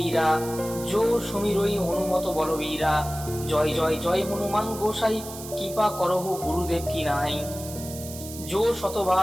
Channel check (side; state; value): right; noise; hiss, 12 dB below the sound